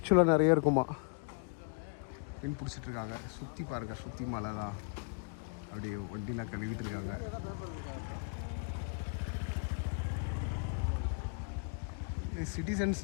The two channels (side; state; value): right; quieter; 35.3 dB